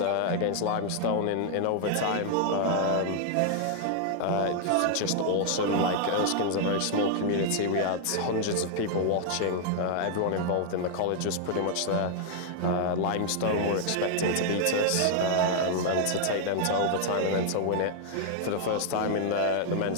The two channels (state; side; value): different; both; correlation 0.00